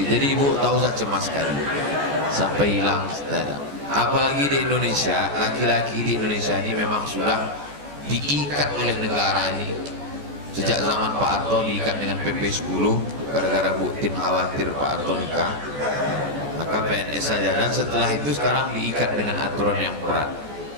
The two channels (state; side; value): late; left; 14 ms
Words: jadi ibu tak usah cemas sekali sampai hilang. Apalagi di Indonesia, laki-laki di Indonesia ini memang sudah diikat oleh negara ini. Sejak zaman Pak Harto diikat dengan PP 10 gara-gara Bu Tin khawatir Pak Harto nikah, maka PNS saja, dan setelah itu sekarang diikat dengan aturan yang berat.